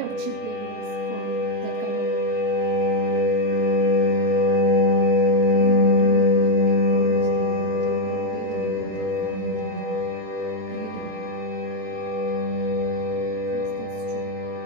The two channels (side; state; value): left; late; 27 ms